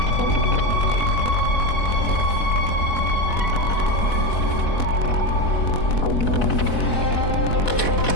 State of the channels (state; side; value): late; right; 4.1 ms